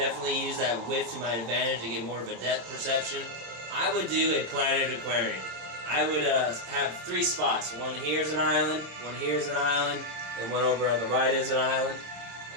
use that width to my advantage to get more of a depth perception. I would do a planted aquarium. I would have 3 spots. One here is an island, one here is an island, and one over on the right is an island.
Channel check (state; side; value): late; left; 26 ms